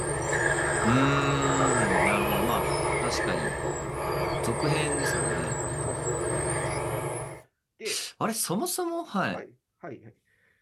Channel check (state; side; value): identical; both; correlation 1.00